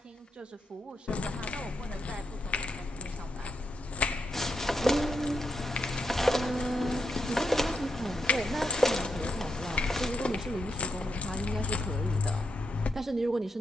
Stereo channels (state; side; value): normal; both; correlation 0.82